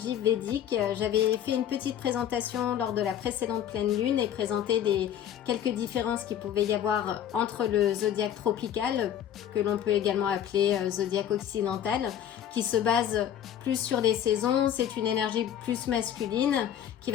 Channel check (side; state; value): right; quieter; 10.2 dB